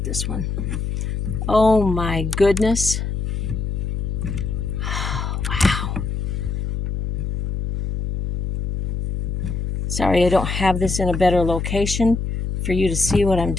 This one. Oh my goodness. Wow. Sorry, I don't have this in a better location for you to see what I'm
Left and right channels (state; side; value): noise; left; hum, 2 dB below the sound